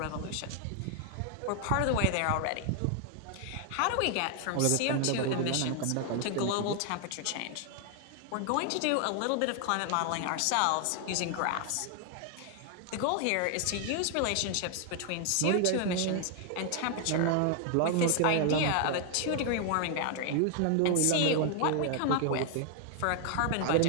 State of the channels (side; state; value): both; different; correlation 0.00